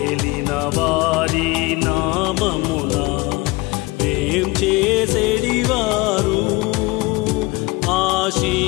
వారి నామమున వేం చేసేడివారు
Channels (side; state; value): right; quieter; 23.0 dB